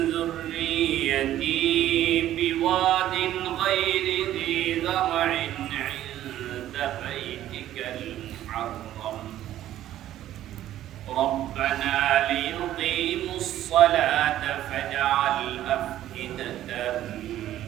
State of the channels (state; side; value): quieter; left; 12.9 dB